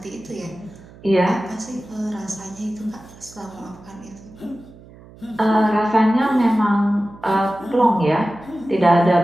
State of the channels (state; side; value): noise; right; hum, 21 dB below the sound